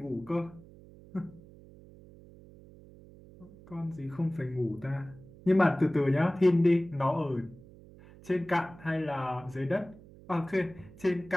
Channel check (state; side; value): noise; right; hum, 21 dB below the sound